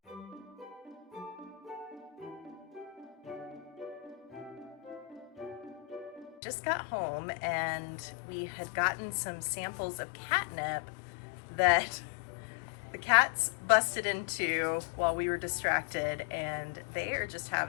Just got home and we had gotten some samples of catnip that the cats busted into while we were distracted, and they are just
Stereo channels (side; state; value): right; drops out; at 6.4 s